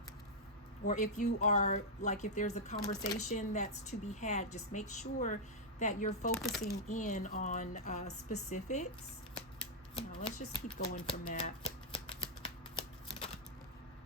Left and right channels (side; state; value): both; normal; correlation -0.05